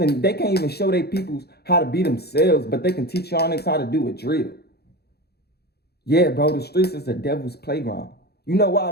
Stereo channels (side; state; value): right; late; 0.47 ms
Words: even show their peoples how to be themselves, but they can teach y'all niggas how to do a drill. Yeah, bro, the streets is the devil's playground. You know why